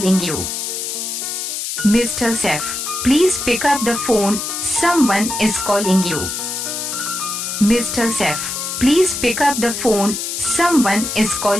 you. Mr. Saif, please pick up the phone, someone is calling you. Mr. Saif, please pick up the phone, someone is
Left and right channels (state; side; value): noise; left; hiss, 4 dB below the sound